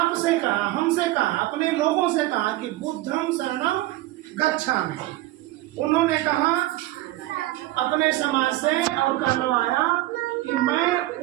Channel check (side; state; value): left; quieter; 17.2 dB